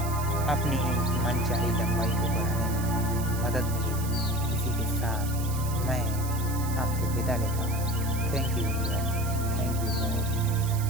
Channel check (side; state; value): right; noise; hiss, 11 dB below the sound